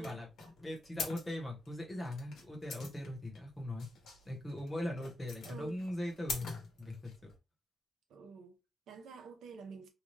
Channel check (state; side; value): normal; both; correlation 0.86